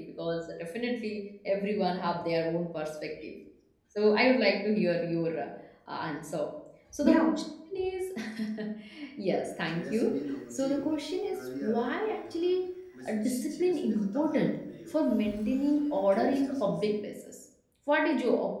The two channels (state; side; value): identical; both; correlation 1.00